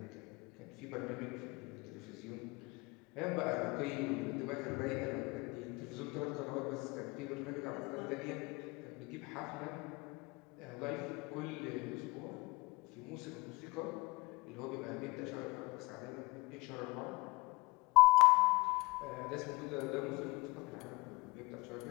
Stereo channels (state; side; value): quieter; right; 24.3 dB